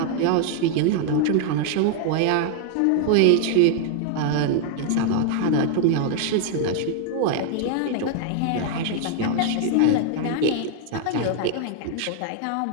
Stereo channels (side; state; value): both; different; correlation 0.00